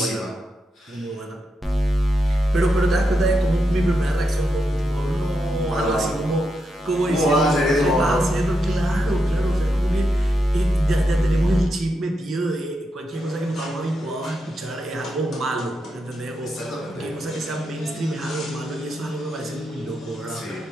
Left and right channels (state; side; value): normal; both; correlation 0.85